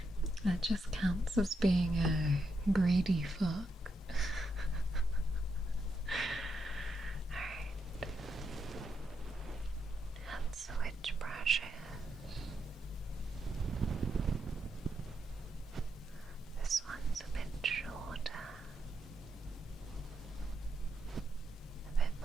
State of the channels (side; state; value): both; normal; correlation 0.82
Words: That just counts as being a greedy fuck. Alright. Let's switch brushes. This one's a bit shorter. A bit